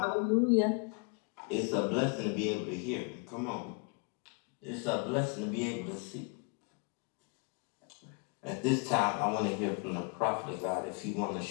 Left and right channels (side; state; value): right; quieter; 34.1 dB